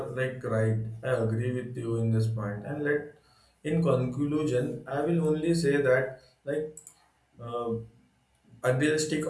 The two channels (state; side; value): identical; both; correlation 1.00